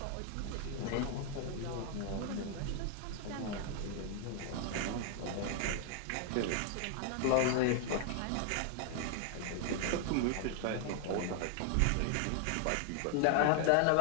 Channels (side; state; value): both; different; correlation 0.00